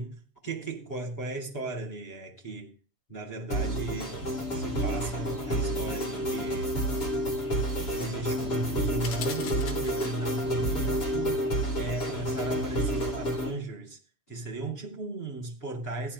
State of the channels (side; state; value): right; late; 7.1 ms